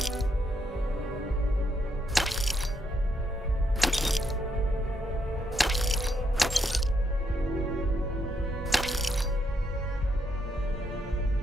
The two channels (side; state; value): both; normal; correlation 0.77